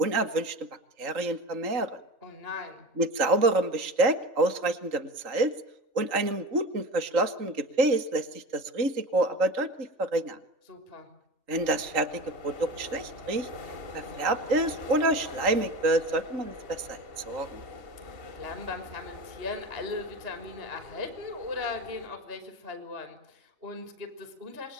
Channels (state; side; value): late; left; 3.8 ms